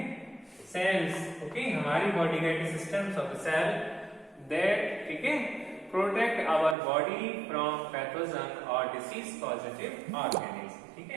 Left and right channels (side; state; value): left; drops out; at 6.8 s